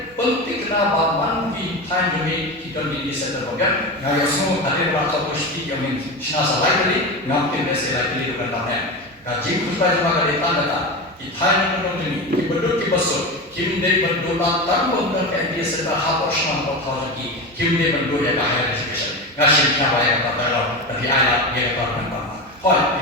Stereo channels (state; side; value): normal; both; correlation 0.22